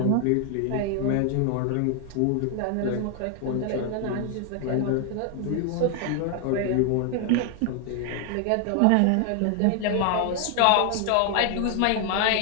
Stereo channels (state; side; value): different; both; correlation 0.00